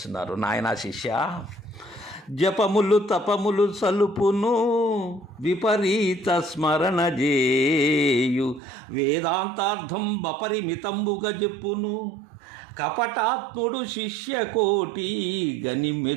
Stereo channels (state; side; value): drops out; left; at 8.6 s